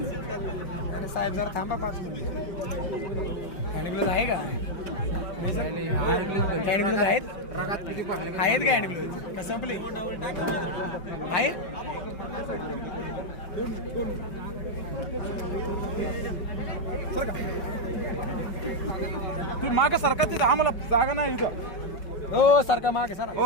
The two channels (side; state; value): right; late; 5.3 ms